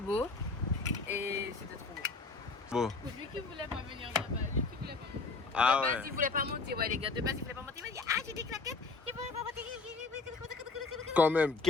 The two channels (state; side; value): quieter; right; 4.0 dB